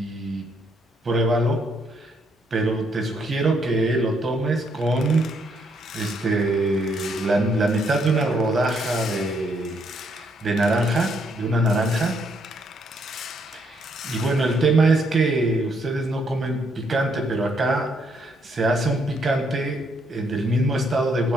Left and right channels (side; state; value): both; normal; correlation 0.73